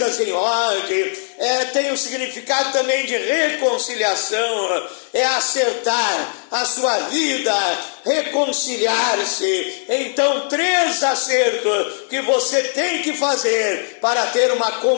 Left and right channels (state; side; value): silent; right; 61 dB below the other